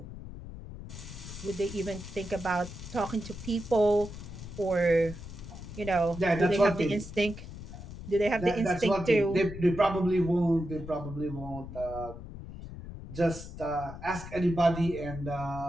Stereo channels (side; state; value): left; noise; rumble, 12 dB below the sound